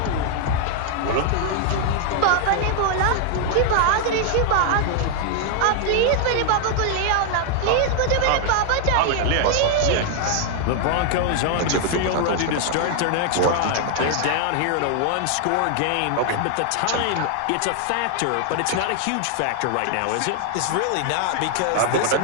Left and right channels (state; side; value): different; both; correlation 0.00